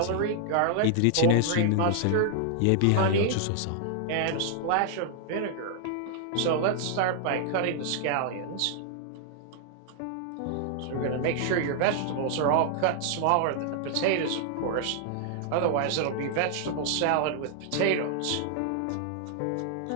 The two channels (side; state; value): both; different; correlation -0.01